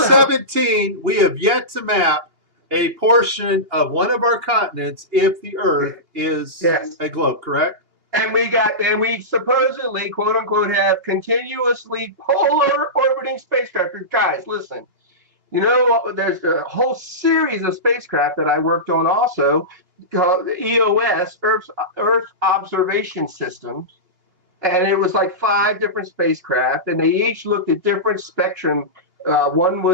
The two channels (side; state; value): left; late; 2.8 ms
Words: we have yet to map a portion of one of our continents if the Earth is a globe, correct? And we supposedly, quote unquote, have continuously polar orbiting spacecraft. Guys, listen. There's a whole series of spacecraft that I worked on also, called EOS, Earth Observation Systems. And it was like 5 different spacecraft, and they each looked at different spectrum. One